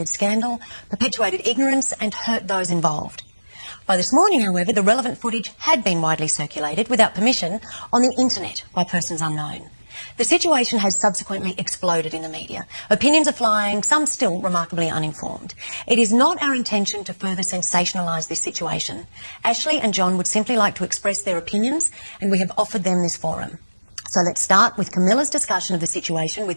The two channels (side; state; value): both; inverted; correlation -1.00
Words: scandal, perpetuated ignorance and hurt those involved. By this morning, however, the relevant footage had been widely circulated without permission on the internet by persons unknown. The situation has subsequently exploded in the media. Opinions are flying, some still remarkably uninformed. It is not our intention to further sensationalise this situation. Ashley and John would simply like to express their opinions, and we have offered them this forum. So let's start with Camilla's discussion of the situation